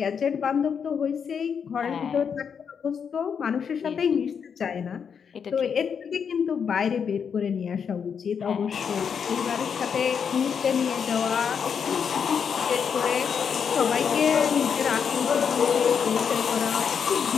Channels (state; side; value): quieter; right; 6.9 dB